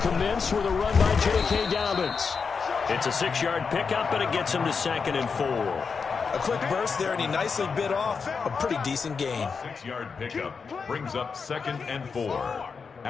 commence with a run by J.K. Dobbins. It's a 6-yard pickup, and it gets him to 2nd and 4. A quick burst there, and he nicely bit off a pretty decent gain. 6-yard pickup brings up 2nd and 4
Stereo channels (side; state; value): right; quieter; 5.4 dB